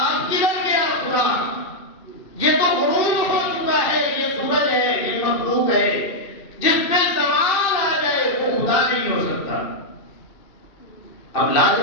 کدھر گیا خدا؟ یہ تو غروب ہو چکا ہے، یہ سورج ہے، یہ مخلوق ہے، جس پہ زوال آ جائے وہ خدا نہیں ہو سکتا۔ اب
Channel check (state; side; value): late; right; 2.5 ms